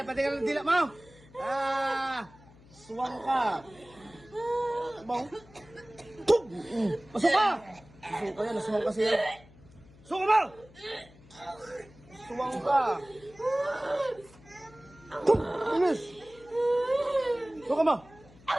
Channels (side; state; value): left; noise; hum, 24 dB below the sound